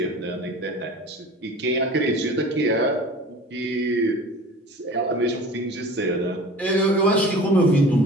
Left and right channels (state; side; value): normal; both; correlation 0.41